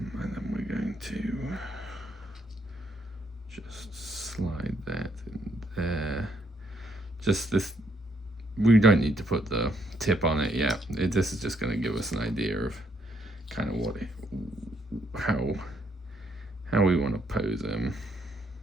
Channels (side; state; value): both; normal; correlation 0.72